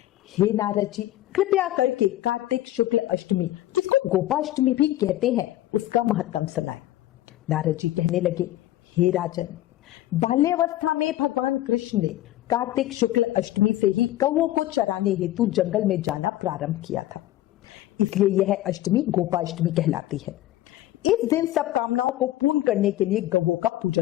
हे नारद जी, कृपया करके कार्तिक शुक्ल अष्टमी, जिसको गोपाष्टमी भी कहते हैं, उसका महत्तम सुनाए। नारद जी कहने लगे, हे राजन, बाल्यावस्था में भगवान कृष्ण ने कार्तिक शुक्ल अष्टमी से ही गौओं को चराने हेतु जंगल में जाना प्रारंभ किया था, इसलिए यह अष्टमी गोपाष्टमी कहलाती है। इस दिन सब कामनाओं को पूर्ण करने के लिए गौओं का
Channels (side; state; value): right; quieter; 14.7 dB